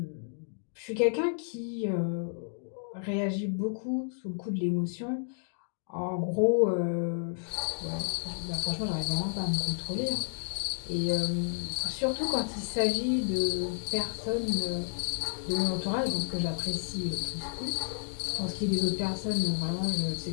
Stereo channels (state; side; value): silent; right; digital silence